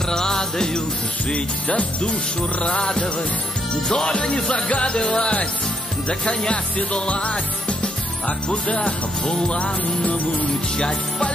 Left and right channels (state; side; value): normal; both; correlation 0.74